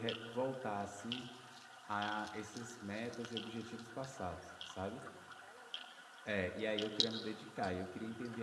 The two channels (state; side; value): identical; both; correlation 1.00